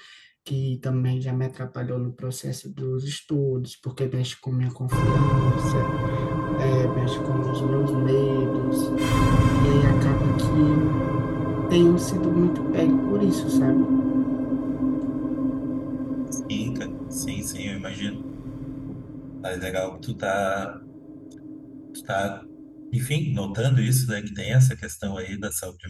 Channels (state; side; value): identical; both; correlation 1.00